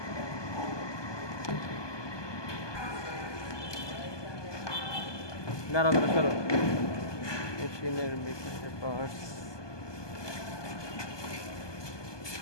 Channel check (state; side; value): late; right; 1.2 ms